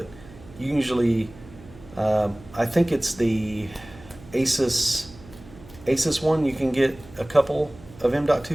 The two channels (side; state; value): right; noise; hum, 20 dB below the sound